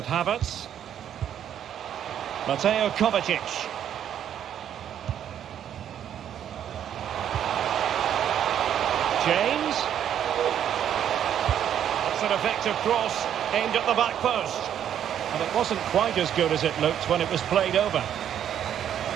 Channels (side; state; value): left; quieter; 9.8 dB